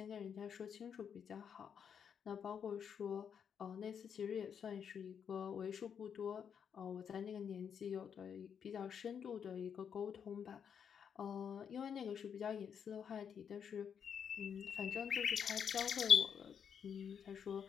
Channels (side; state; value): right; quieter; 7.6 dB